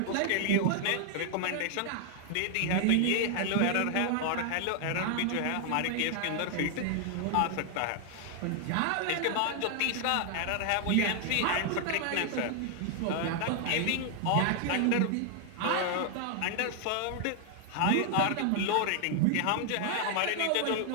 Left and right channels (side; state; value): both; different; correlation 0.00